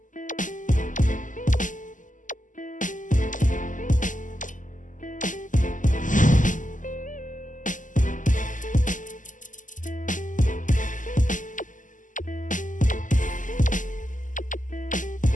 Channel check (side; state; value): right; late; 0.37 ms